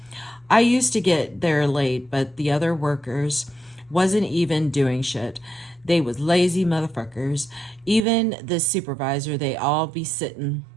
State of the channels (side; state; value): left; drops out; at 8.0 s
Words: I used to get there late, but the other workers wasn't even doing shit. They was lazy motherfuckers. Even the supervisor, they all be sitting